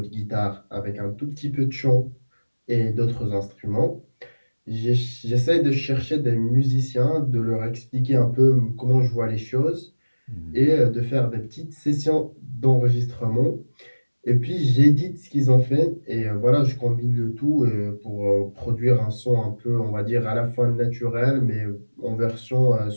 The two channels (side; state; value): both; inverted; correlation -1.00